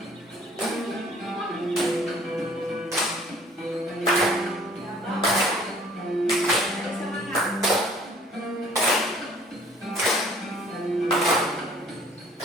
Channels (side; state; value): both; normal; correlation 0.55